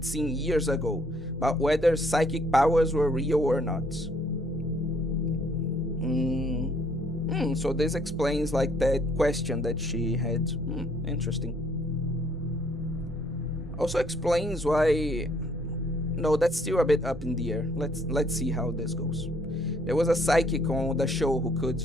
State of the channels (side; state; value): both; normal; correlation 0.64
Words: seen years ago about whether psychic powers were real or not. So this explains that question that she had. Interesting. Also explains why. No, that's still a bit up in the air. Let's see how this goes. There was a psychic on the show who could